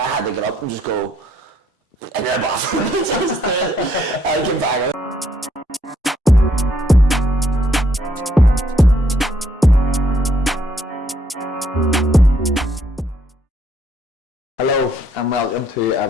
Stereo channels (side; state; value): both; normal; correlation 0.70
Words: had to get up and just go in the bathroom. I came back. Hello and welcome to